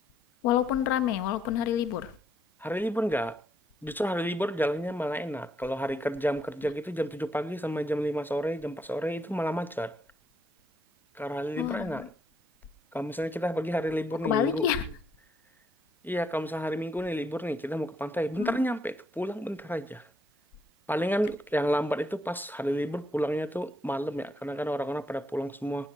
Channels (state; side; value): normal; both; correlation 0.73